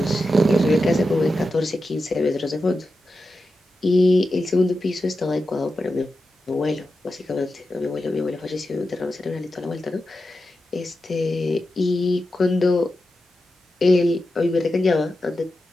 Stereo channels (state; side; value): normal; both; correlation 0.90